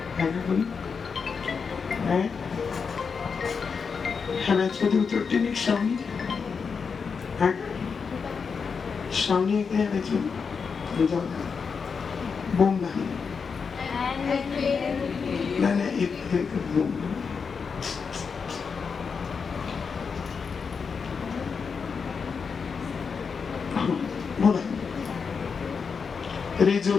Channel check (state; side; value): quieter; right; 5.7 dB